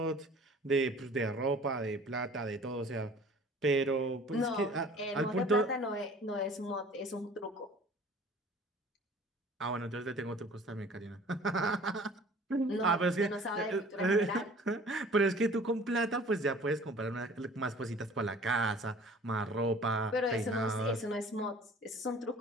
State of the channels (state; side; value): normal; both; correlation 0.48